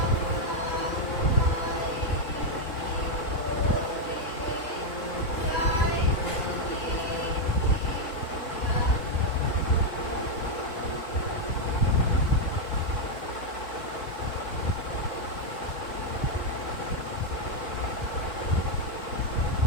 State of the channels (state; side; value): late; right; 4.1 ms